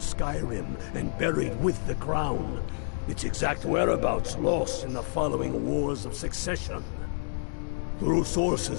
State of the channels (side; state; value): right; silent; digital silence